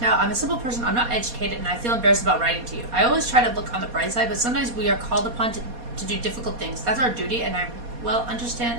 I'm a simple person, I'm not educated, and I feel embarrassed about writing to you. I always try to look on the bright side, but sometimes we are called upon to do difficult things. That's our duty, and I well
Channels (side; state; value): left; late; 4.2 ms